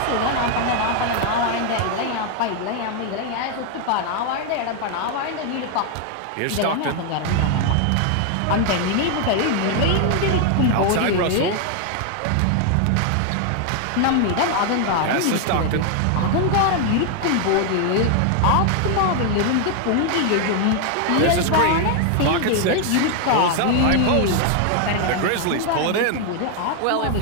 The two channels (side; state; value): both; different; correlation 0.00